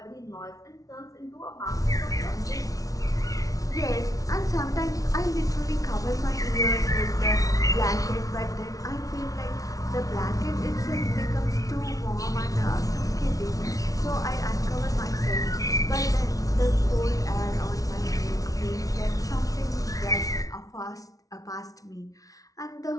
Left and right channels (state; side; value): late; right; 0.17 ms